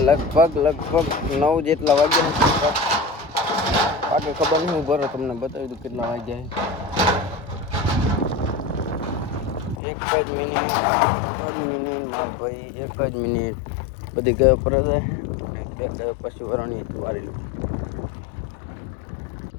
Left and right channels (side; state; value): right; drops out; at 9.8 s